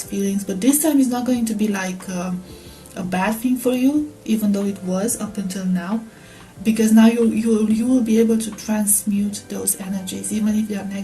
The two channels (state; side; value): identical; both; correlation 1.00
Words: feelings, but this time it's not going to be like a bad thing for you, even though it was up until now. Because now you will be able to transmute those energies, even if they are